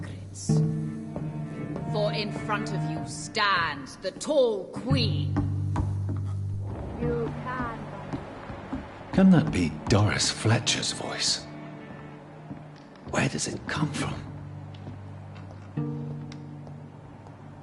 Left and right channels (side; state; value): both; identical; correlation 1.00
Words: For in front of you stands the tall queen. You can. Can that be Doris Fletcher's voice? Where does it come from?